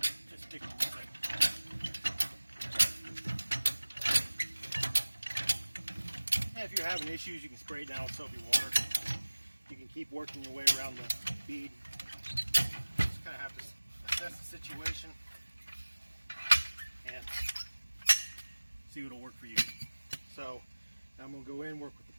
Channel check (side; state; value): both; inverted; correlation -1.00